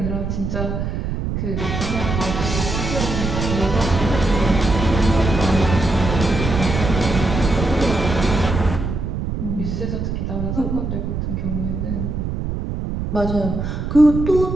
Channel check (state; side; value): noise; right; rumble, 3 dB below the sound